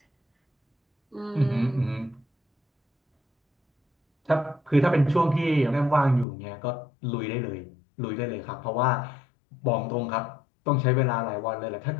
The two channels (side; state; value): right; drops out; at 6.2 s